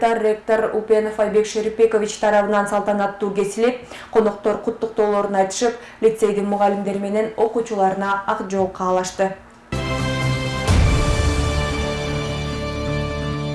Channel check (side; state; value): both; identical; correlation 1.00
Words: ректор Упенов Айбек Шерипбекович тарабынан салтанаттуу кесилип, коноктор куттуктоолорун айтышып, лицейдин мугалимдери менен окуучуларына ак жол каалашты.